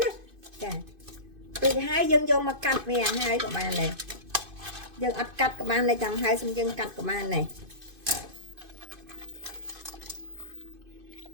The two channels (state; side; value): late; left; 2.5 ms